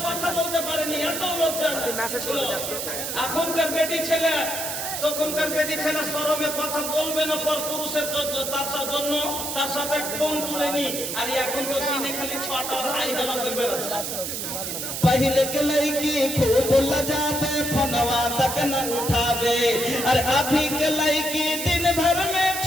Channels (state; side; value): noise; right; hiss, 4 dB below the sound